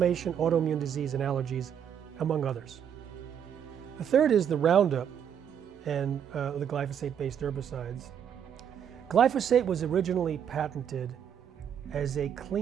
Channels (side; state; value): left; quieter; 8.6 dB